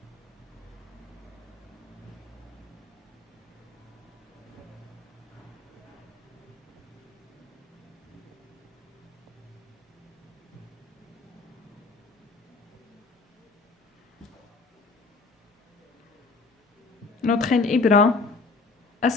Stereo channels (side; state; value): right; quieter; 4.0 dB